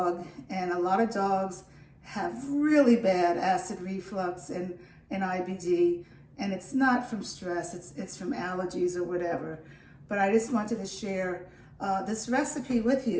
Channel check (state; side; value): identical; both; correlation 1.00